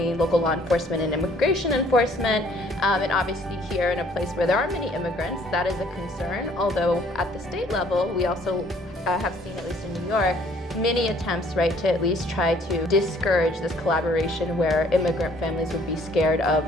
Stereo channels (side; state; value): both; normal; correlation 0.59